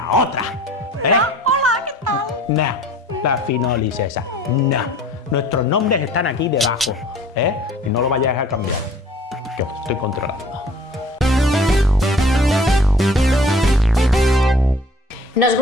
otra. Hola, ¿qué tal? No, la finolis esa. No. Nuestros nombres están aquí debajo. Y no lo vayáis a cambiar, que os estoy controlando. Nos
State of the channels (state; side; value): normal; both; correlation 0.50